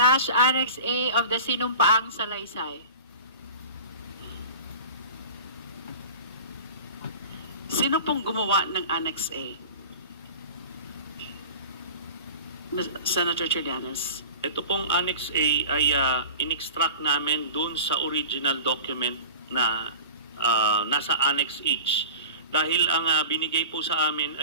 Annex A of the sinumpaang salaysay. Sino pong gumawa ng Annex A? Senator Trillanes. Ito pong Annex A ay in-extract namin dun sa original document na nasa Annex H. Dahil ang binigay po sa amin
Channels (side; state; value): both; inverted; correlation -0.37